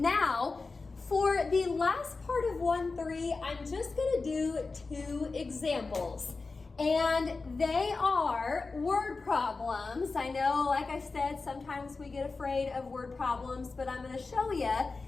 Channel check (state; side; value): quieter; right; 4.0 dB